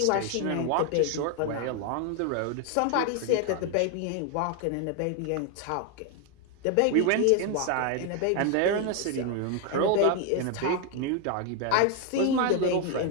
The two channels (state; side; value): different; both; correlation 0.01